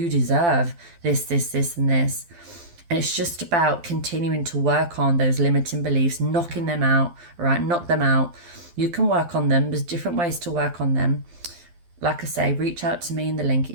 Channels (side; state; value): left; late; 12 ms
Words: deserve this and this. And it's just about continuing to work on those limiting beliefs, knocking them out, right? Knock them out. You can work on them. There's different ways to work on them. Like I say, reach out to me in the link